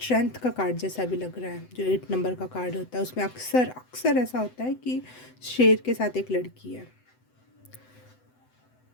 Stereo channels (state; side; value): late; right; 7.9 ms